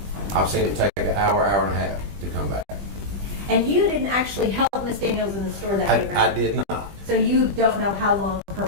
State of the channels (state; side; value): late; left; 20 ms